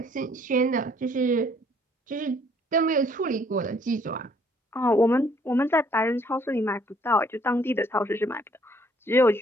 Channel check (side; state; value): both; normal; correlation 0.63